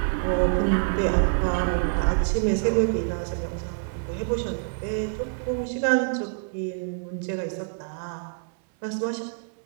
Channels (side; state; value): left; silent; 61 dB below the other